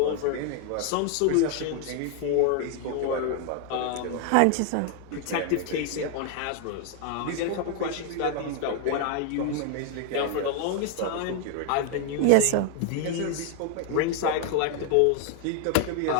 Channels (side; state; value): both; different; correlation 0.00